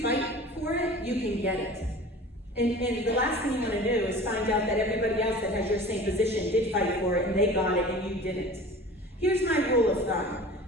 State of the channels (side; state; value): both; normal; correlation 0.40